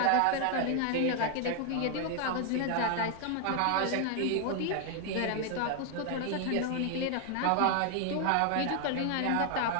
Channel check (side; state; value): both; different; correlation 0.00